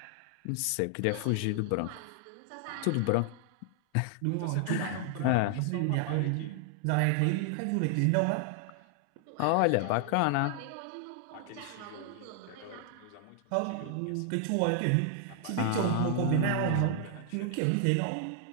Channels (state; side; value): different; both; correlation 0.00